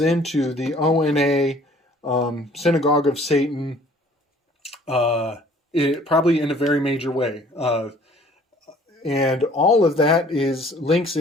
into the ONA, Synagogue of Satan, probably in a very major way. And all of that is links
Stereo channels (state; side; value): normal; both; correlation 0.54